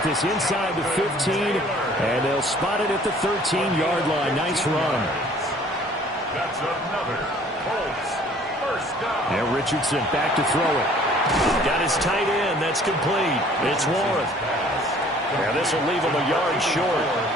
this inside the 15, and they'll spot it at the 13-yard line. Nice run. That's another Colts first down. And Richardson back to throw it. Got his tight end. That's complete. It's Warren. Now this will leave him a yard short.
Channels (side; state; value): both; normal; correlation 0.54